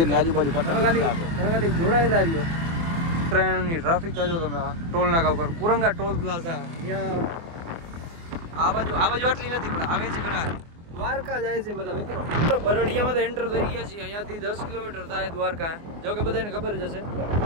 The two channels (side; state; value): left; late; 24 ms